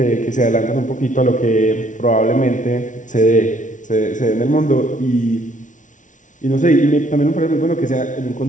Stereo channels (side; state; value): right; late; 0.37 ms